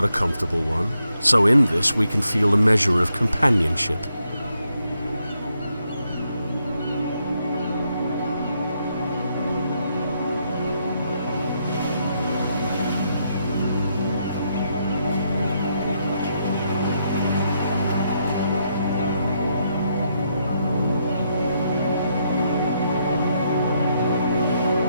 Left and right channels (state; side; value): inverted; both; correlation -0.78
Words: a comfortable one, so in this we can feel a measure of companionship.